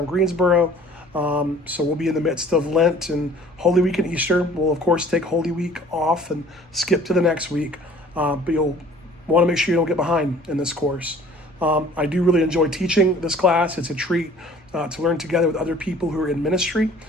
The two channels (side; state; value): both; normal; correlation 0.51